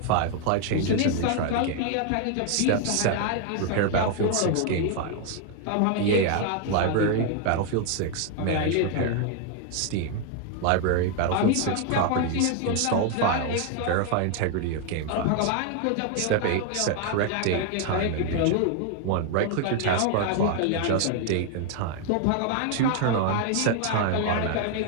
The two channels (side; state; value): both; different; correlation 0.00